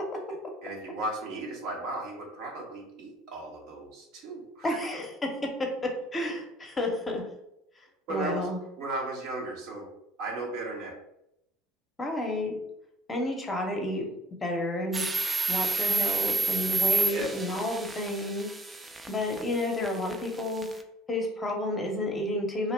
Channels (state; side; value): normal; both; correlation 0.58